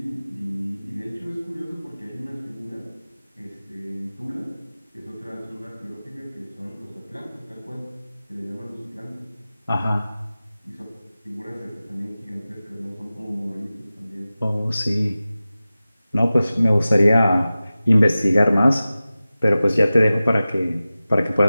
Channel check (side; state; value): both; inverted; correlation -0.96